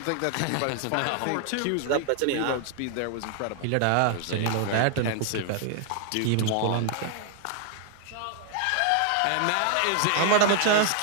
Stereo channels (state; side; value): different; both; correlation 0.00